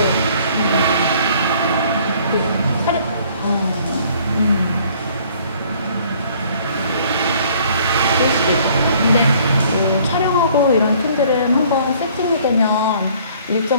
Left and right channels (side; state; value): both; inverted; correlation -0.58